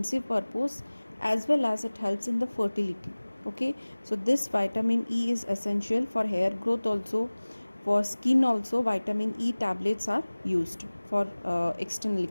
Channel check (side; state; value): both; inverted; correlation -1.00